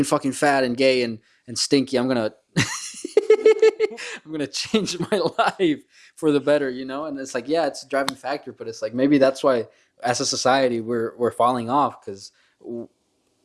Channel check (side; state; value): both; identical; correlation 1.00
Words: fucking fat and gay and stinky. I'm gonna I'm gonna change my life for the better, you know. And it's like, yeah, it's a driving factor, but it's like maybe that's why as a society we're falling off because